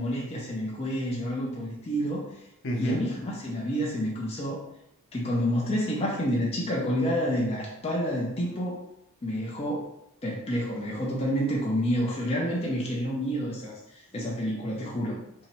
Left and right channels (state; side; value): normal; both; correlation 0.64